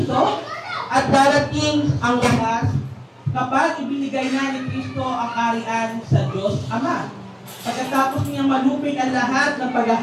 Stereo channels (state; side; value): identical; both; correlation 1.00